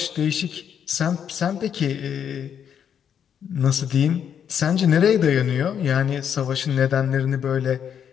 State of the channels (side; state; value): right; quieter; 8.4 dB